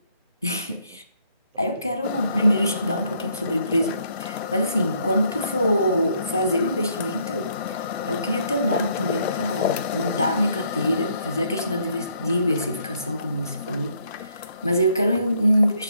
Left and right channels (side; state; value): both; inverted; correlation -0.69